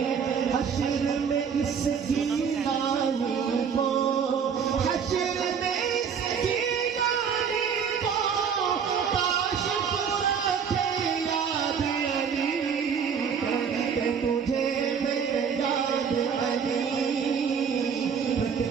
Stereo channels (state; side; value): quieter; left; 6.8 dB